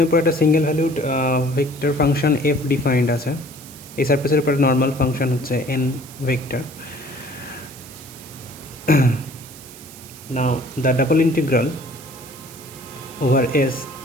উপর একটা single valued vector function F defined আছে। এই সারফেসের উপর নর্মাল ফাংশন হচ্ছে N vector. Now the double integral over s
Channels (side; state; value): right; noise; hiss, 18 dB below the sound